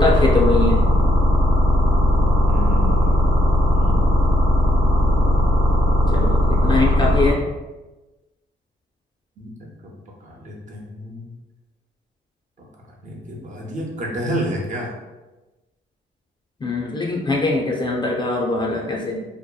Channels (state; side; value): normal; both; correlation 0.76